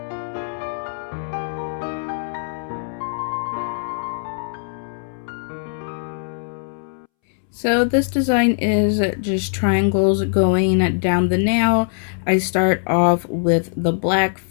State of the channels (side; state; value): right; silent; 65 dB below the other